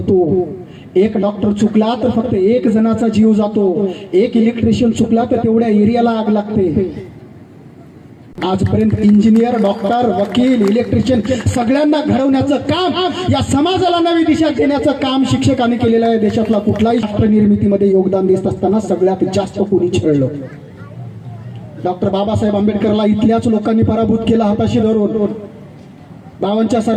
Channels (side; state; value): both; identical; correlation 1.00